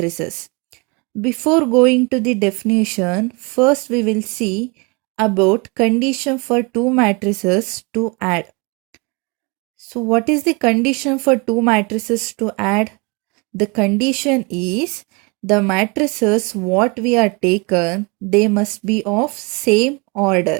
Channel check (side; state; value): left; quieter; 29.8 dB